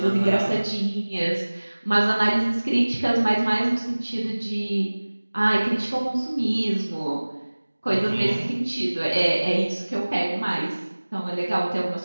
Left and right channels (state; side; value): inverted; both; correlation -1.00